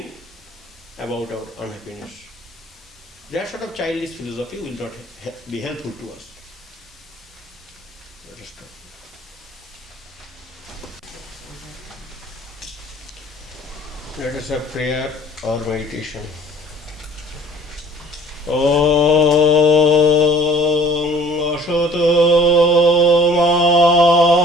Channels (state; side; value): normal; both; correlation 0.51